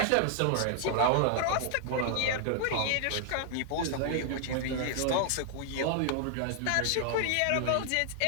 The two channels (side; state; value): both; different; correlation -0.01